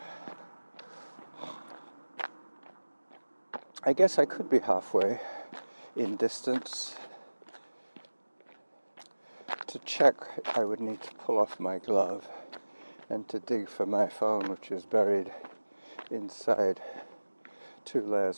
I guess I could be halfway in distance. To check, I would need to pull off my glove and to dig for my phone, which is buried inside 2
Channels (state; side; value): inverted; both; correlation -1.00